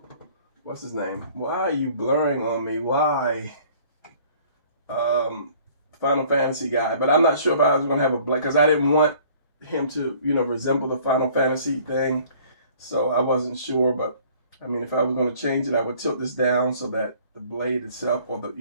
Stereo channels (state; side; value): inverted; both; correlation -0.54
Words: what's his name? Why are you blurring on me? Why? Final Fantasy guy. But I'm not sure if I was going to have a blade, because I didn't want him to, you know, resemble the Final Fantasy thing. So I wasn't sure, but I mean, if I was going to change it, I would tilt this down so that the blade itself, or